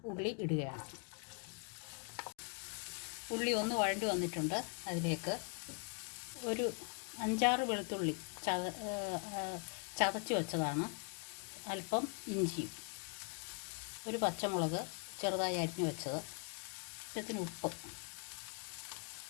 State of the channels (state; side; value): quieter; right; 38.0 dB